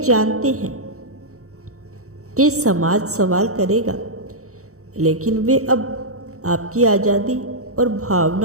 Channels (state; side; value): late; left; 0.64 ms